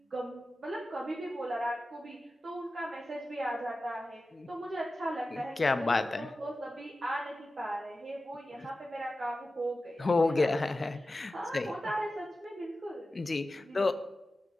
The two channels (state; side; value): normal; both; correlation 0.94